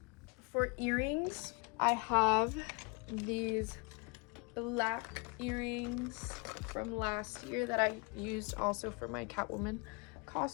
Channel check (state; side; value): quieter; right; 30.5 dB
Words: For earrings, I have these black earrings from last year that I used also for my Catwoman